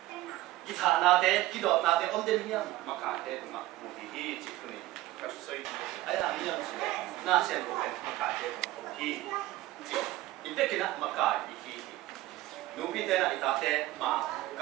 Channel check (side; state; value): left; quieter; 16.8 dB